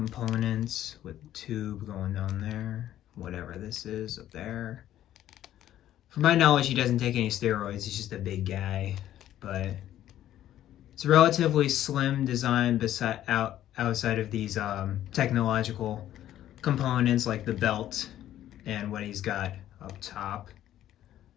with the tube going down there, whatever this is up there. From my knowledge, he doesn't take any steroids. He's just a big guy, but it's a relatively slim design outside of these technological components like the belt and what he's got up top.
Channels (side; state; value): right; quieter; 12.3 dB